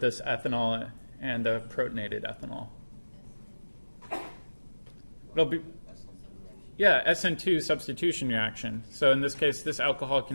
ethanol and the protonated ethanol? It'll be, yeah, SN2 substitution reaction. So in this case, this alcohol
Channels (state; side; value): inverted; both; correlation -1.00